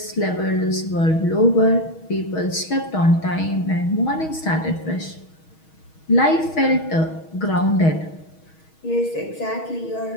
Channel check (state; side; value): late; right; 6.3 ms